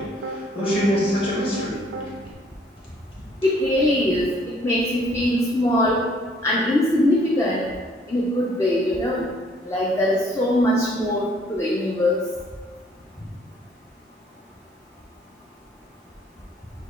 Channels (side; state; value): both; normal; correlation 0.62